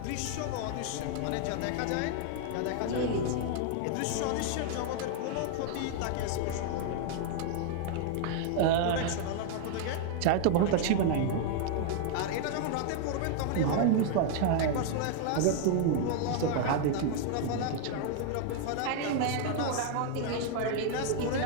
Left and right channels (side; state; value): both; different; correlation 0.00